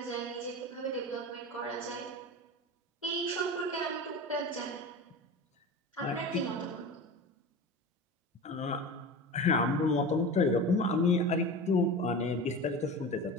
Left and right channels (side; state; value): both; normal; correlation 0.30